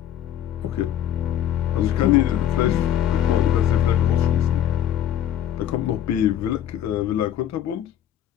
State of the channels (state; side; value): quieter; right; 10.8 dB